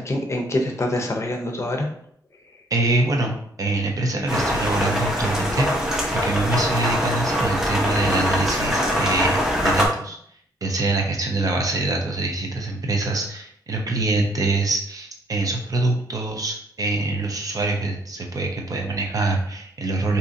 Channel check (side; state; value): both; normal; correlation 0.63